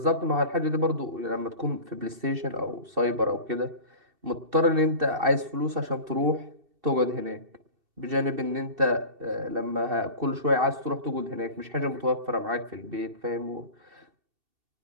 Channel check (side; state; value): left; late; 2.7 ms